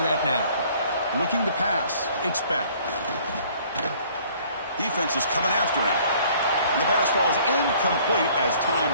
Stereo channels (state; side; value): inverted; both; correlation -0.56